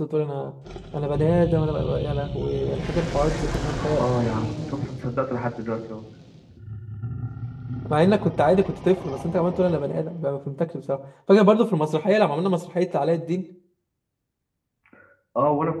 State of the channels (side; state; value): both; identical; correlation 1.00